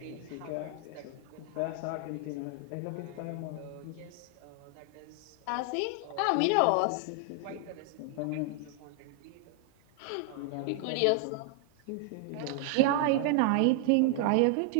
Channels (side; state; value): both; different; correlation 0.00